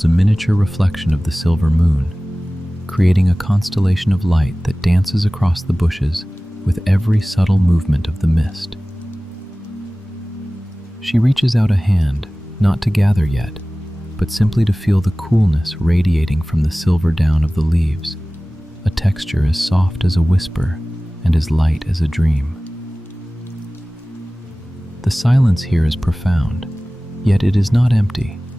a miniature reflection of the silver moon, creating a constellation of light that dances across the bushes with every subtle movement of the mist. She reaches out a hand, not to gather yet, but simply to feel the coolness radiating from the silver down of the leaves, a texture as soft as a whisper and as light as a dream. The silence here is profound, yet it is not empty.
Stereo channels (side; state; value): both; normal; correlation 0.98